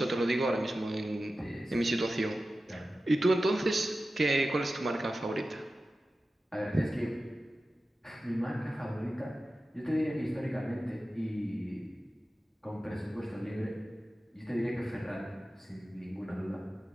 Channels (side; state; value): both; normal; correlation 0.94